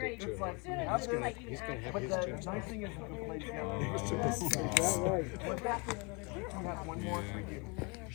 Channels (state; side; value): quieter; right; 30.8 dB